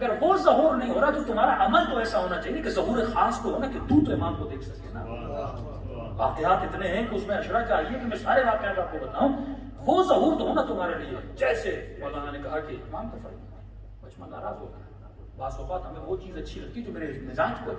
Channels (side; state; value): both; identical; correlation 1.00